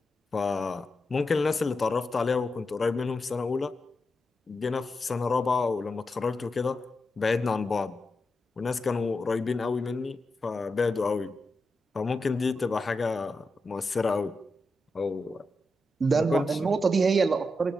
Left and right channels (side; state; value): both; normal; correlation 0.88